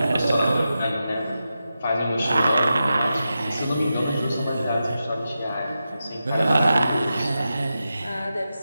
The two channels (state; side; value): inverted; both; correlation -0.90